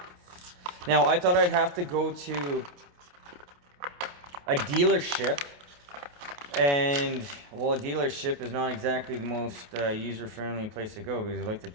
Now, I thought I'd have to go to a dealership, and well, a dealership is not exactly the most user-friendly place to go because they like to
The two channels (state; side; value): late; left; 28 ms